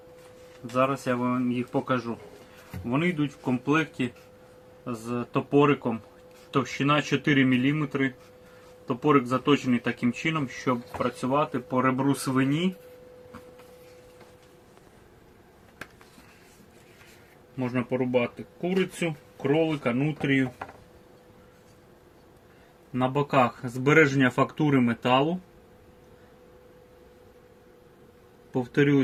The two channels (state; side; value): identical; both; correlation 1.00